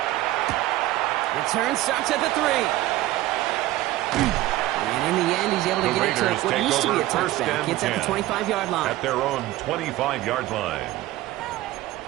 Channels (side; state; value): left; quieter; 16.1 dB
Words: Return starts at the 3. And in the end, he's able to get it to what used to be a touchback. Gets at the 25-yard line. At their own 25-yard line.